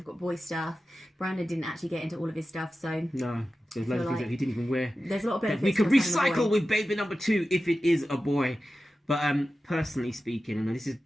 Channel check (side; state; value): both; normal; correlation 0.94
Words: got boy stuff. Brandon didn't actually get into all of his stuff, so... No. There's loads of things that he didn't even wear. There's a lot of benefits. We could recycle with baby number 2 if it is a boy. But personally speaking, and this is